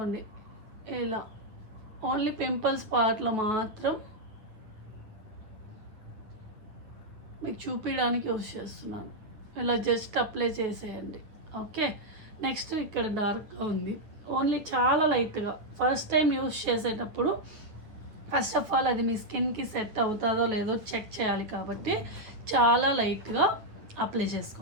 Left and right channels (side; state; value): left; late; 9.3 ms